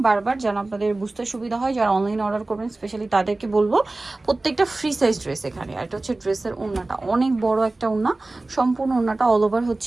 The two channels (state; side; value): quieter; left; 3.0 dB